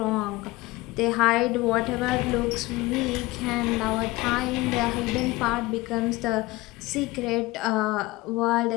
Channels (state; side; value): quieter; right; 20.3 dB